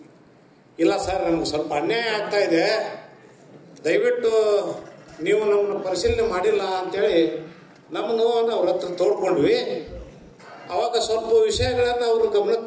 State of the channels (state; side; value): identical; both; correlation 1.00